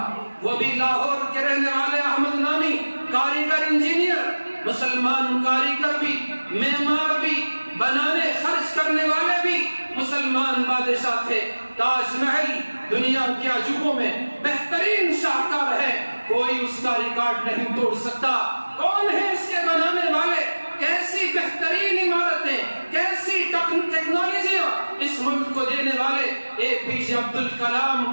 وہ بھی لاہور کے رہنے والے احمد نامی کاریگر، انجینئر، مسلمان کاریگر بھی، معمار بھی، بنانے خرچ کرنے والے بھی مسلمان بادشاہ تھے۔ تاج محل دنیا کے عجوبوں میں بہترین شاہکار ہے، کوئی اس کا ریکارڈ نہیں توڑ سکتا۔ کون ہے اس کے بنانے والے؟ کیسی بہترین عمارتیں، کیسی ٹیکنالوجیاں اس ملک کو دینے والے APJ عبد الکلام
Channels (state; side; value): inverted; both; correlation -1.00